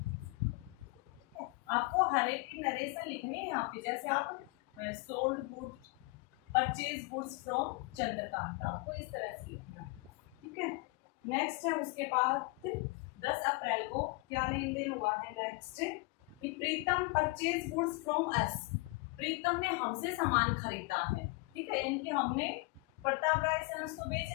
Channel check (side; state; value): right; quieter; 25.8 dB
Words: आपको हर एक की नरेशन लिखनी है यहाँ पे, जैसे आप sold goods, purchase goods from Chandrakant, आपको इस तरह से लिखना है, ठीक है। नेक्स्ट है उसके बाद 10 अप्रैल को क्या लेन देन हुआ है, नेक्स्ट कि प्रीतम परचेज गुड्स फ्रॉम अस। प्रीतम ने हमसे सामान खरीदा है, ठीक है, यानी कि हमने प्रताप राय सन्स को